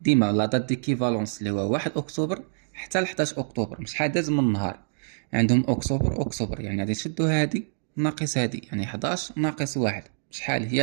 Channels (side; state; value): left; silent; digital silence